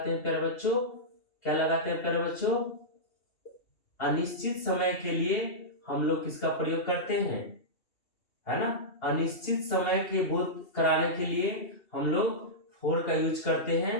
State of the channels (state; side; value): late; right; 2.7 ms